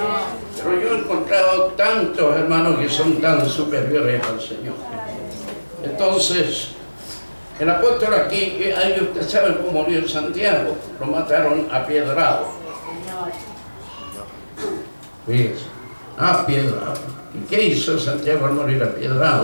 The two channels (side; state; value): both; inverted; correlation -1.00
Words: Pero yo he encontrado tantos hermanos que son tan superiores al Señor. Entonces, el apóstol aquí, ahí usted sabe cómo murió Santiago, lo mataron a piedrado. Fíjese, a piedrado. ¿Y qué hizo Santiago al morir a